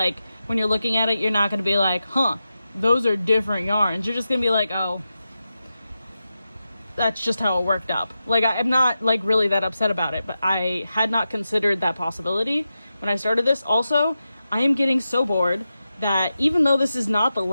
when you're looking at it, you're not gonna be like, huh, those are different yarns. You're just gonna be like, oh, that's just how it worked up. Like, I'm not like really that upset about it, but I had not considered that possibility when I started this. Also, I am getting so bored that even though this is not the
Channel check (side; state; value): both; inverted; correlation -0.91